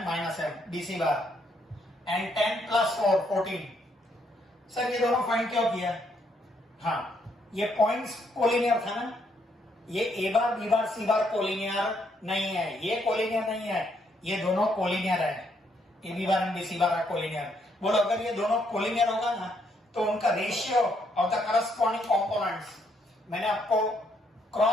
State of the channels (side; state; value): both; normal; correlation 0.73